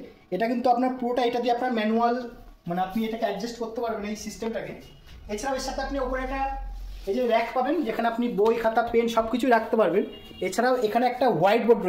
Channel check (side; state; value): both; identical; correlation 1.00